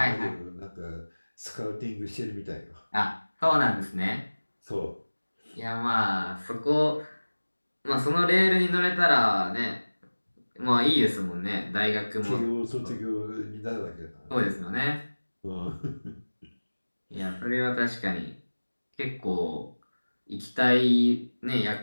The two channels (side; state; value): both; inverted; correlation -1.00